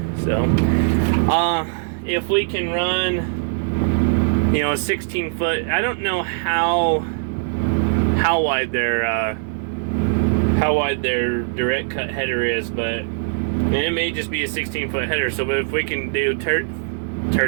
So if we can run, you know, a 16 foot, I don't know how wide their direct cut header is, but it may just be a 16 foot header. So if we can do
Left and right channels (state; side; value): silent; left; digital silence